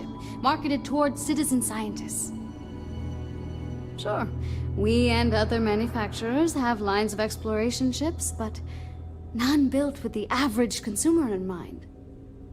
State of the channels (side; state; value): both; identical; correlation 1.00